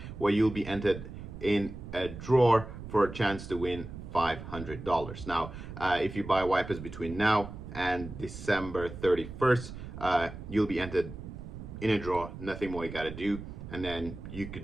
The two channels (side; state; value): right; noise; rumble, 11 dB below the sound